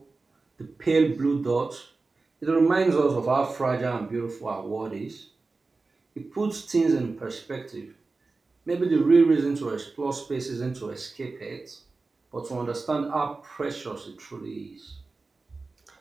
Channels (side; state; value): left; quieter; 3.8 dB